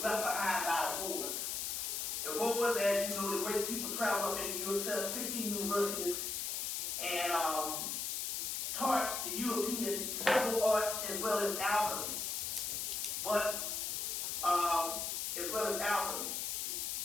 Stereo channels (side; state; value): left; noise; hiss, 1 dB below the sound